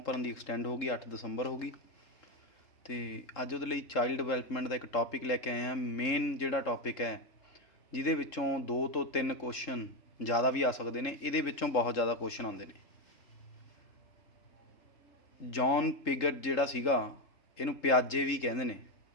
ਭਰਨ ਦੀ ਐਕਸਟੈਂਡ ਹੋ ਗਈ, 8 ਦਸੰਬਰ ਹੋ ਗਈ। ਅਤੇ ਅੱਜ ਉਹਦੇ ਲਈ ਚਾਈਲਡ ਡਿਵੈਲਪਮੈਂਟ ਦਾ ਇੱਕ ਟੌਪਿਕ ਲੈ ਕੇ ਆਏ ਹਾਂ। ਮੇਨ ਜਿਹੜਾ ਟੌਪਿਕ ਹੈ ਜਿਹਦੇ ਵਿੱਚੋਂ 2 ਤੋਂ 3 ਕੁਐਸਚਨ ਜ਼ਿਆਦਾ ਵੀ ਆ ਸਕਦੇ ਨੇ, ਇਹਦੇ ਵਿੱਚੋਂ ਬਹੁਤ ਜ਼ਿਆਦਾ ਕੁਐਸਚਨ ਆਉਂਦੇ ਨੇ। ਜੌਨ ਪਿਗਟ ਜਿਹੜਾ ਸੀਗਾ, ਇਹਨੂੰ ਪਿਆਜੇ ਵੀ ਕਹਿੰਦੇ ਨੇ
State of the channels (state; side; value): late; right; 3.7 ms